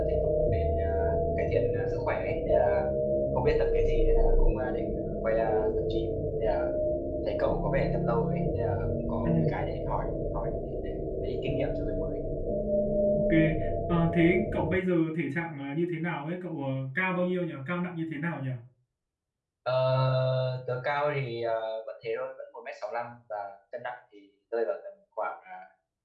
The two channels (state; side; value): identical; both; correlation 1.00